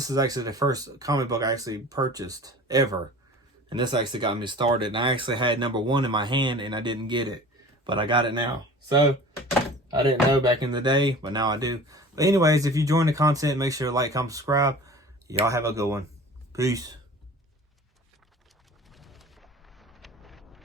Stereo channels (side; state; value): both; normal; correlation 0.41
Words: is actually the first comic book I actually purchased ever. And this actually got me started. And I actually had number 1 in my hand and I didn't get it. But I got it now. So, I didn't know back in the day, but now I do. But anyways, if you enjoyed the content, make sure to like, comment, subscribe. Y'all have a good one. Peace.